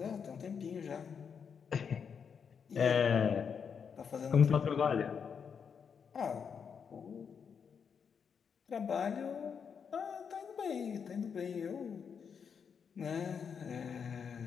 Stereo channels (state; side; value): quieter; right; 6.7 dB